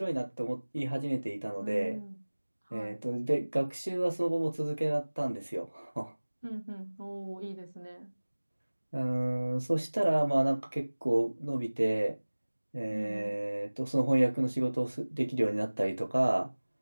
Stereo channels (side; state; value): both; inverted; correlation -1.00